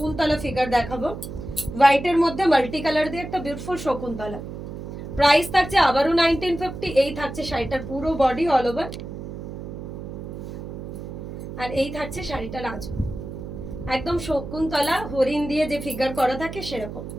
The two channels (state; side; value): noise; right; hum, 9 dB below the sound